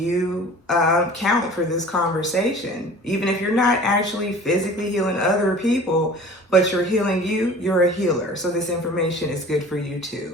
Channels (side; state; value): both; normal; correlation 0.44